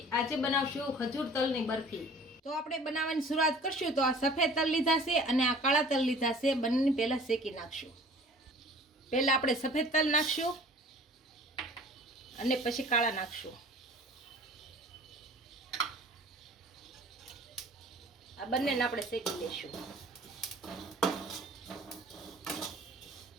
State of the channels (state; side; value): normal; both; correlation 0.48